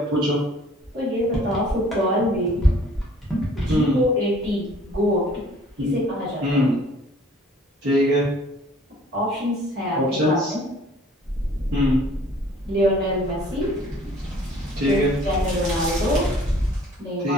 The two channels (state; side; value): normal; both; correlation 0.54